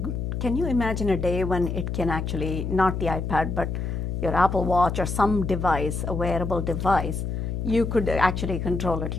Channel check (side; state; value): left; noise; hum, 3 dB below the sound